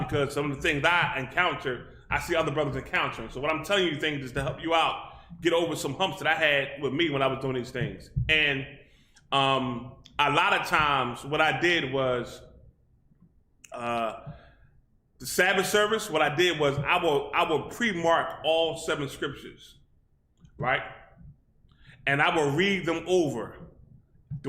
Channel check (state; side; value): identical; both; correlation 1.00